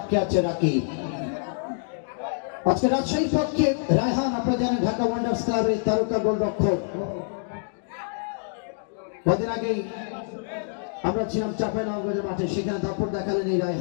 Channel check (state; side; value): silent; right; digital silence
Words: আছে রাকিব। আজকে রাজশাহীর পক্ষে রায়হান, আপনারা জানেন ঢাকা ওয়ান্ডার্স ক্লাবের তারকা গোলরক্ষক। কদিন আগেই আমরা ছিলাম চাঁপাইনবাবগঞ্জের মাঠে, সেখানে দাপট দেখালেন এই